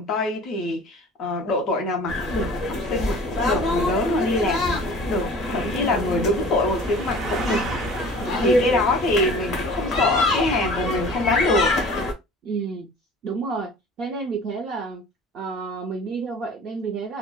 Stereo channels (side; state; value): both; normal; correlation 0.44